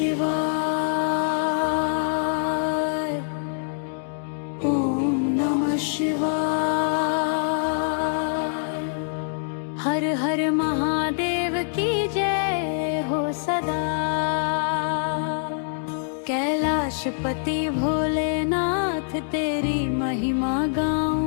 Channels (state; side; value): silent; right; 62 dB below the other